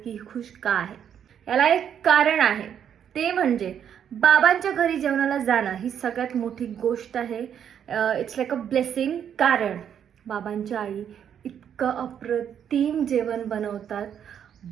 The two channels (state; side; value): quieter; left; 8.8 dB